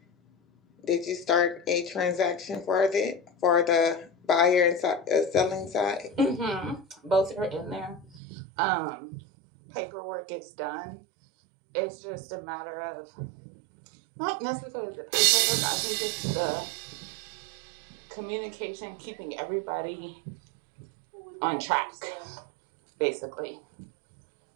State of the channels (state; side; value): drops out; left; at 8.2 s